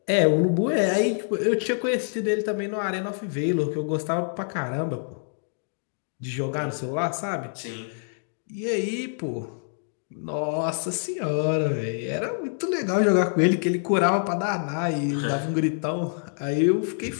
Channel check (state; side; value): silent; right; digital silence